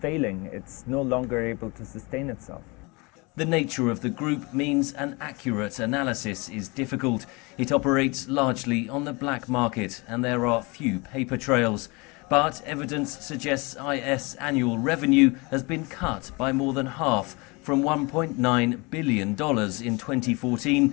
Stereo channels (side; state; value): right; quieter; 27.1 dB